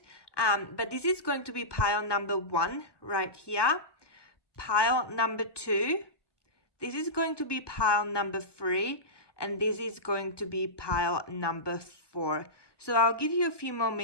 But this is going to be pile number 1 right here. Pile number 2. This is going to be pile number 3. And this is going to be pile number 4. So I'll give you a few more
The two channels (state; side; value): late; right; 1.2 ms